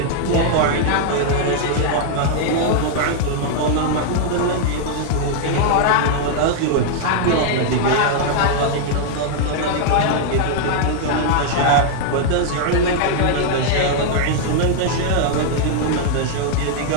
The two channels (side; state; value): both; different; correlation -0.01